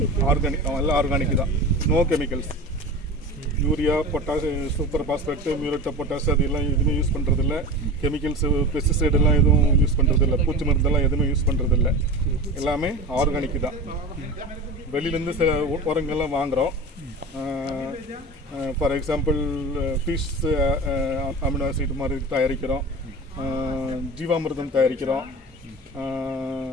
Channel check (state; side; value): normal; both; correlation 0.31